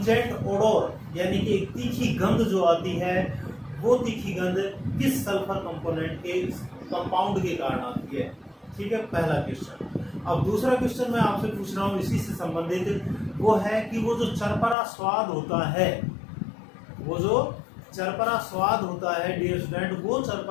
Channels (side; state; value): right; drops out; at 14.8 s